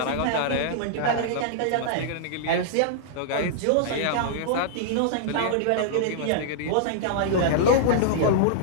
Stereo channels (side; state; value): both; different; correlation -0.02